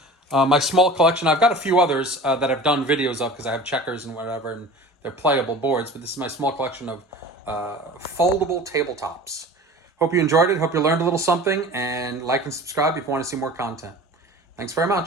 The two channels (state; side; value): normal; both; correlation 0.39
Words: my small collection. I've got a few others that I've done videos of because I have checkers and whatever, and they're playable boards, but this is my small collection of foldable tabletops. Hope you enjoyed it. Hope you learned a little something, and like and subscribe if you want to see more content. Thanks very